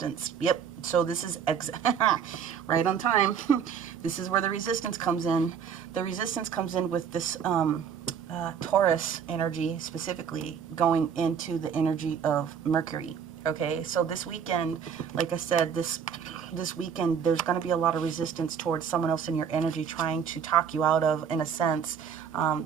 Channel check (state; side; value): quieter; left; 7.4 dB